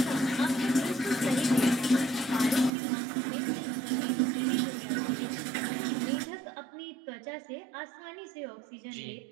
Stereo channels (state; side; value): drops out; left; at 2.7 s